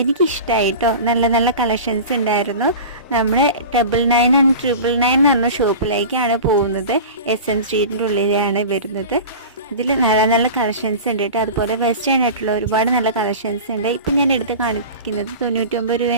എനിക്കിഷ്ടമായി കേട്ടോ. നല്ല നല്ല കളക്ഷൻസ് ഉണ്ടായിരുന്നു. നമ്മുടെ 999 and 999 എന്ന് പറഞ്ഞ ഷോപ്പിലേക്കാണ് പോകുന്നത്. SM സ്ട്രീറ്റിൻ്റെ ഉള്ളിലാണ് വരുന്നത്. ഇതിൽ നല്ല നല്ല കളക്ഷൻസ് ഉണ്ട് കേട്ടോ. അതുപോലെ വെസ്റ്റേൺ ആയിട്ടുള്ള ഒരുപാട് നല്ല കളക്ഷൻസ് ഉണ്ട്. ഇപ്പം ഞാൻ എടുത്ത് കാണിക്കുന്നത് 99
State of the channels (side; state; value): both; inverted; correlation -0.34